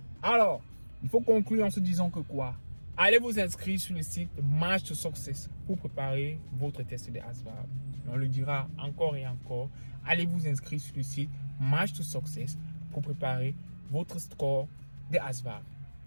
Alors, il faut conclure en se disant que quoi? Allez vous inscrire sur le site March to Success pour préparer votre test de ASVAB. On le dira encore et encore. Allez vous inscrire sur le site March to Success pour préparer votre score de ASVAB.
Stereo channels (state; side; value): inverted; both; correlation -1.00